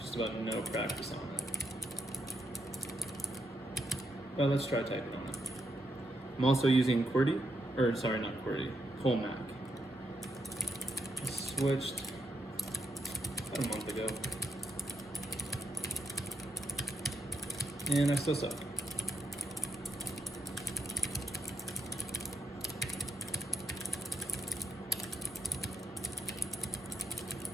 just about no practice on it. But let's try typing on it. I'm also using QWERTY, or sorry, not QWERTY, colemak. I switched about a month ago, and I still suck.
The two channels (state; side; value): normal; both; correlation 0.83